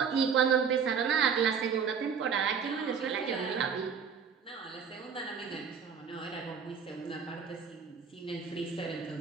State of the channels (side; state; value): left; quieter; 6.4 dB